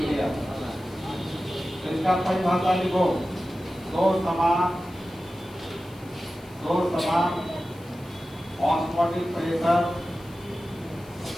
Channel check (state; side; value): noise; left; hiss, 25 dB below the sound